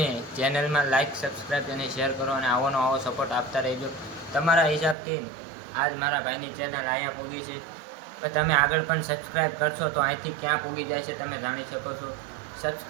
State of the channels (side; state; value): left; drops out; at 5.0 s